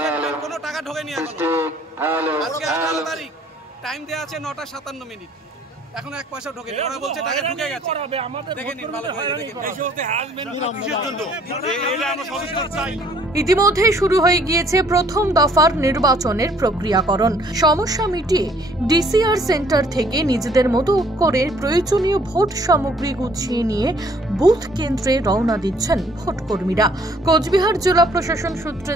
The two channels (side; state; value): both; normal; correlation 0.60